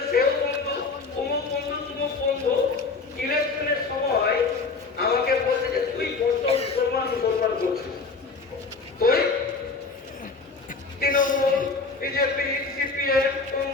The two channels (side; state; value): right; quieter; 4.3 dB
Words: সেও বন্ধু, অমুক বন্ধু তুমুক বন্ধু। ইলেকশনের সময়